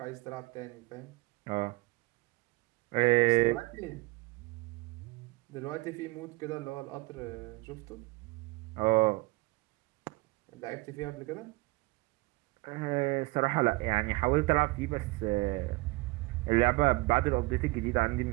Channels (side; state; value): left; quieter; 23.3 dB